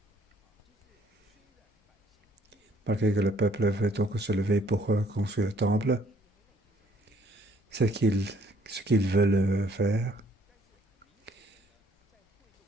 malgré que le peuple veut donc se lever pour construire le temple, ce qu'ils veulent faire,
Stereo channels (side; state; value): both; normal; correlation 0.63